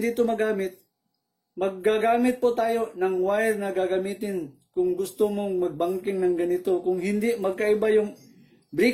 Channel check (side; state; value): both; identical; correlation 1.00